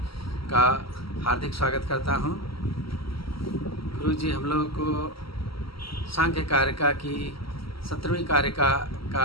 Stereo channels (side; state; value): right; late; 0.75 ms